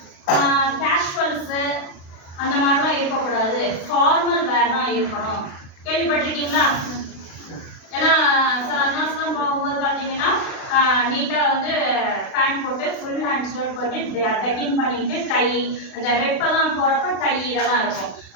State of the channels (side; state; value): right; late; 36 ms